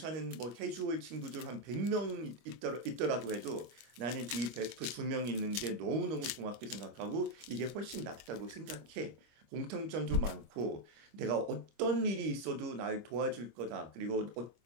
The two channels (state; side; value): late; left; 25 ms